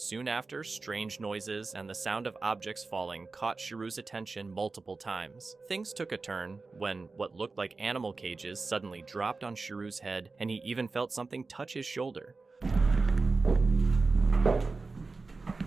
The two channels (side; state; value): left; quieter; 3.9 dB